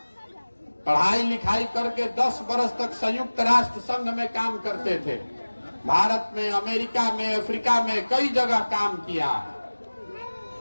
पढ़ाई लिखाई करके 10 बरस तक संयुक्त राष्ट्र संघ में काम करते थे। भारत में, अमेरिका में, अफ्रीका में कई जगह काम किया है,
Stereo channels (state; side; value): inverted; both; correlation -1.00